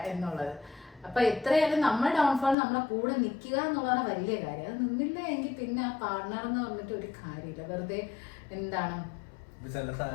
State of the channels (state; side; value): drops out; right; at 2.6 s